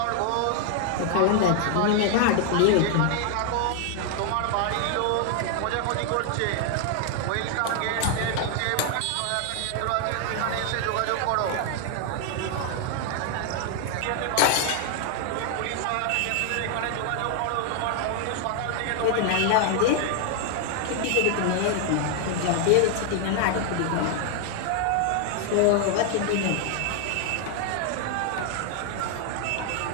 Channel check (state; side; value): different; both; correlation 0.00